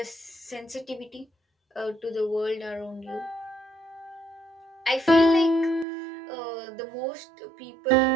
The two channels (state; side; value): drops out; left; at 5.9 s